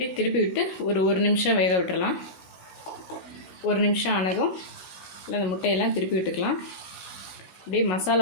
திருப்பி விட்டு ஒரு நிமிஷம் வேக விட்டுடலாம். 1 நிமிஷம் ஆனதும் இல்லை அந்த முட்டையெல்லாம் திருப்பி விட்டுக்கலாம். அப்படியே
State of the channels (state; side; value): late; right; 16 ms